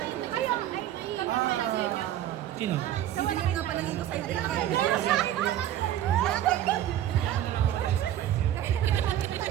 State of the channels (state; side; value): quieter; left; 12.0 dB